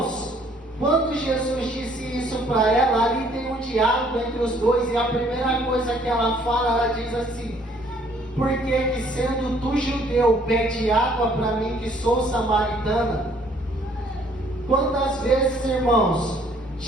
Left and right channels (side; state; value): both; normal; correlation 0.62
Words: quando Jesus disse isso para ela, ali tem um diálogo entre os dois, e a primeira coisa que ela fala, ela diz assim, por que sendo tu judeu, pede água para mim que sou samaritana? Quantas vezes, irmãos,